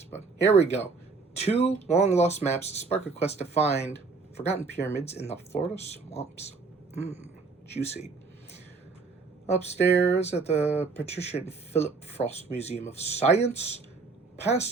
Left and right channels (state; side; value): quieter; left; 4.3 dB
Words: but here we go. 2 long-lost maps spark a quest to find forgotten pyramids in the Florida swamps. Juicy. Upstairs at the Patricia and Philip Frost Museum of Science,